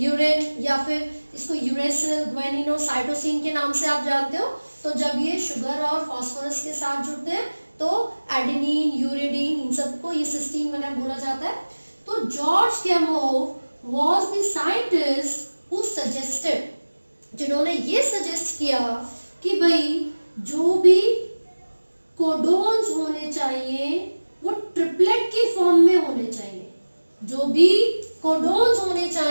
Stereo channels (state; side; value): inverted; both; correlation -1.00